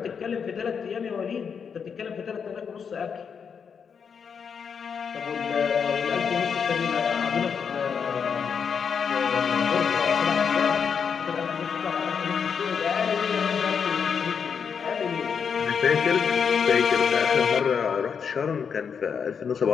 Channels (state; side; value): quieter; right; 6.6 dB